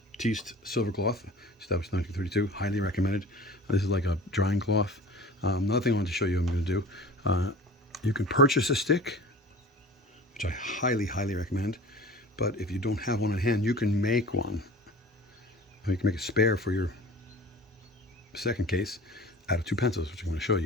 silver cloth, established 1932. Highly recommended. This is like a drying cloth. Another thing I wanted to show you I'm going to do. You can purchase a stick, which I highly recommend. But if you don't have one on hand, you can make one. You can make a spare for your second case out of 2 pencils, which I'm going to show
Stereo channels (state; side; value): normal; both; correlation 0.40